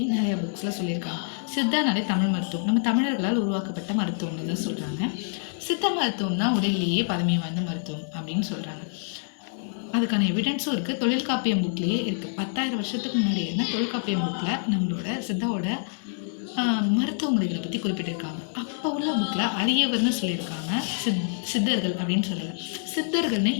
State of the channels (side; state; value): right; silent; digital silence